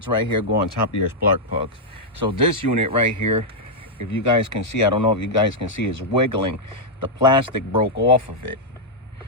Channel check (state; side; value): normal; both; correlation -0.04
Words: right here go on top of your spark plugs. So this unit right here, if you guys can see, I don't know if you guys can see, is wiggling. The plastic broke off of it.